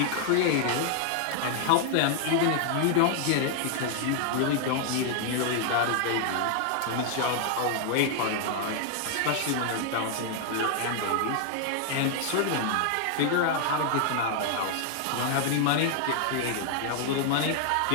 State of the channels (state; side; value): different; both; correlation 0.00